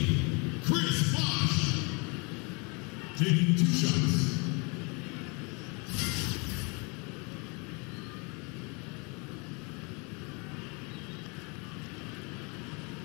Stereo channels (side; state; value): right; quieter; 31.4 dB